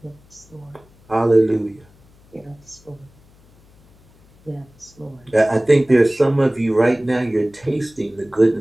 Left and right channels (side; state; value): left; noise; hum, 29 dB below the sound